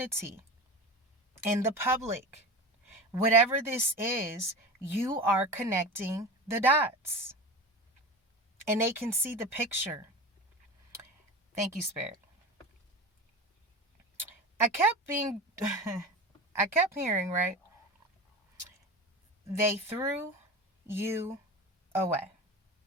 in the public. Whatever this is, you are connecting the dots. And they can see the picture. Thank you, Spirit. I kept hearing, right? They threw you away.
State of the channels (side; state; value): both; normal; correlation 0.29